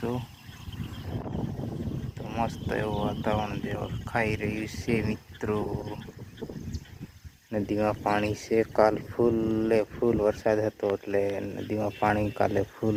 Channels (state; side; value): identical; both; correlation 1.00